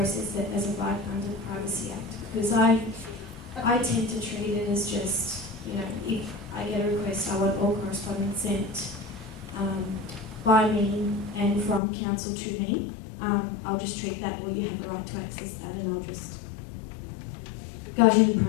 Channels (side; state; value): right; drops out; at 11.8 s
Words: it as a right under the Privacy Act? Because I tend to treat it as just, if I get a request, I want all correspondence sent by me and from council to me. I'll just treat that, or you have the right to access that, and I'll just go ahead and